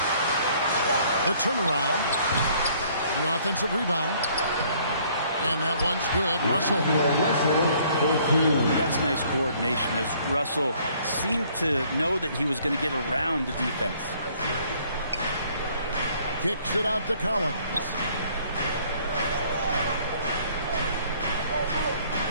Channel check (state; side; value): inverted; both; correlation -0.61